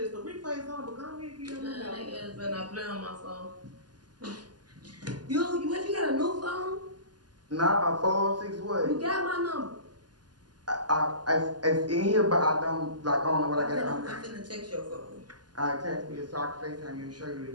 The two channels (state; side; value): late; left; 0.70 ms